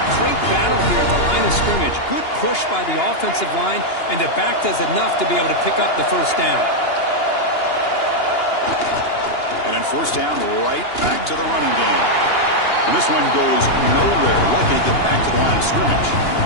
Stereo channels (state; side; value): late; right; 2.9 ms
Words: great battle here at the line of scrimmage. Good push by the offensive line, and the back does enough to be able to pick up the first down. And then first down, right back to the running game. And this one goes nowhere. Lucky to get back to the line of scrimmage.